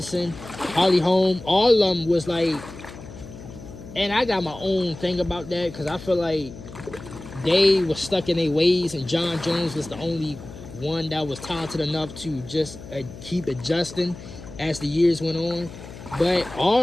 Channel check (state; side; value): noise; left; hum, 15 dB below the sound